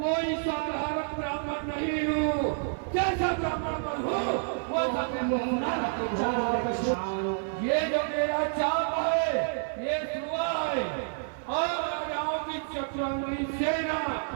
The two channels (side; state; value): left; silent; digital silence